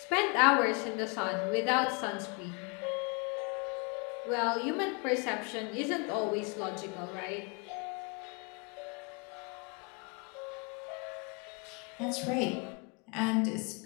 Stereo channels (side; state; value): right; quieter; 32.4 dB